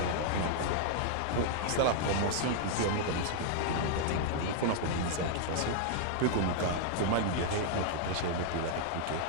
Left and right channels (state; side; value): different; both; correlation -0.01